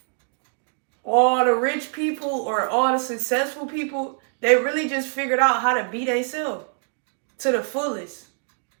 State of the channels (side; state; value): left; silent; digital silence